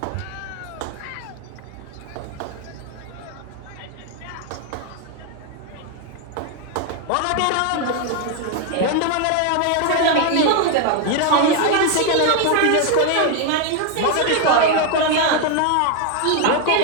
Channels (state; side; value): different; both; correlation 0.01